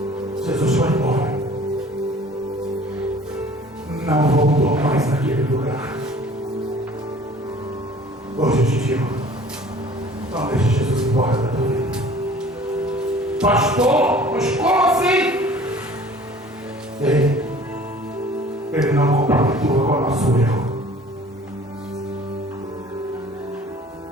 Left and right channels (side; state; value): both; normal; correlation 0.49